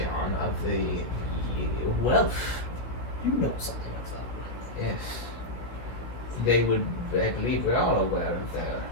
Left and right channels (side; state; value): right; late; 17 ms